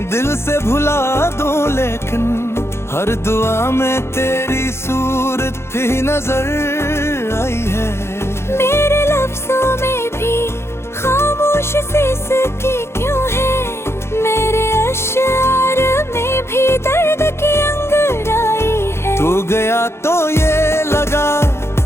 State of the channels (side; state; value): right; late; 0.12 ms